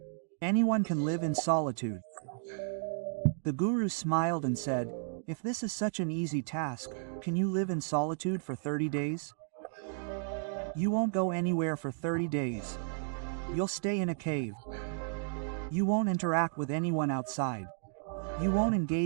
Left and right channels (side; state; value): left; silent; digital silence